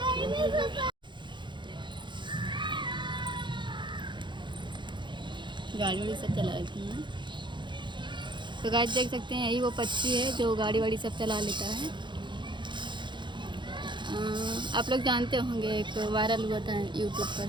गाड़ी वाड़ी सब चला लेती हैं। तो गाइस देख सकते हैं, यही वो पक्षी है जो गाड़ी वाड़ी सब चला लेता है। आप लोग जानते होंगे, एक वायरल हुआ था यूट्यूब पर,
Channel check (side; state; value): left; late; 0.23 ms